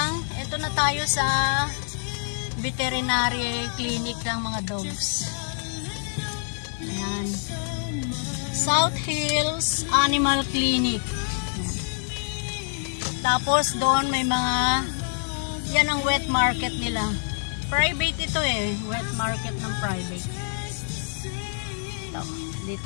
ito na tayo sa veterinary clinic ng mga dogs. Ayan. South Hills Animal Clinic. Tapos doon may mga Yan ang wet market nila. Private ito eh. Wet market ng private. Ito.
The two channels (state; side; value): silent; right; 61 dB below the other